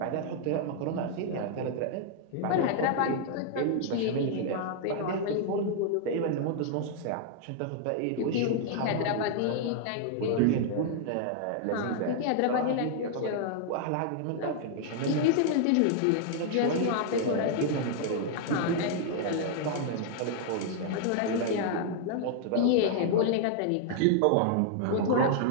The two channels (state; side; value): different; both; correlation 0.00